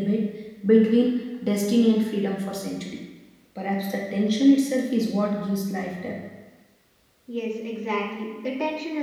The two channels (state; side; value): identical; both; correlation 1.00